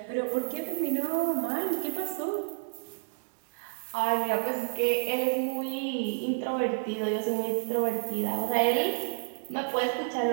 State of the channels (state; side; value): silent; left; digital silence